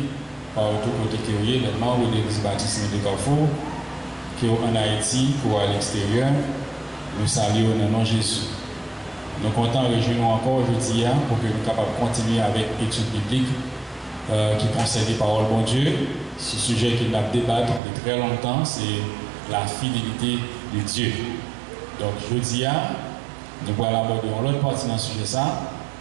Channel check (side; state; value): left; drops out; at 17.8 s